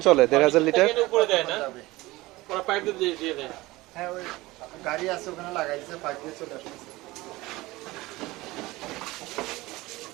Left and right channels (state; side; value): quieter; left; 20.0 dB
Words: চলে 1,500 লিটার? উপরে দেয় না, ওরা পাইপ দিয়ে দেয়। হ্যাঁ, ওই গাড়ি আছে ওখানে লাগাই দিয়েছে, পাইপ দিয়ে চলে আসছে।